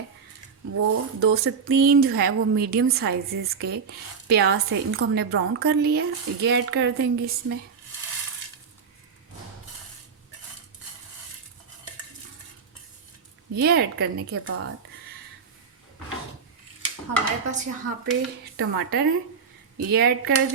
वो 2 से 3 जो है वो मीडियम साइज़ के प्याज है, इनको हमने ब्राउन कर लिया है। ये ऐड कर देंगे इसमें। ये ऐड करने के बाद हमारे पास यहाँ पे टमाटर है, ये ऐड कर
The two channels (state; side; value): quieter; left; 5.9 dB